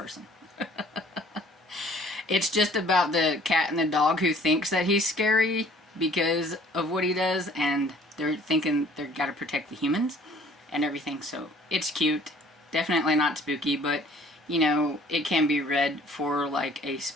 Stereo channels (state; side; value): normal; both; correlation 0.55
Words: It's just about the cat and the dog who thinks that he's scary because of what he does, and they're thinking they've got to protect the humans and everything. So it's cute. Definitely not spooky, but, you know, it can be read for like a